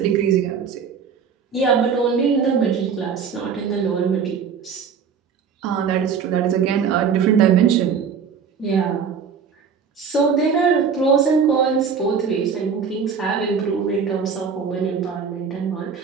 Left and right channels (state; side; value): quieter; left; 6.4 dB